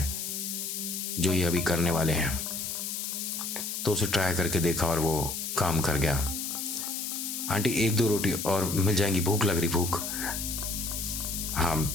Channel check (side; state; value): left; noise; hiss, 4 dB below the sound